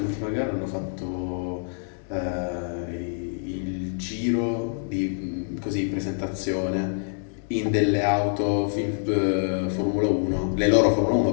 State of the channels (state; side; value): silent; right; digital silence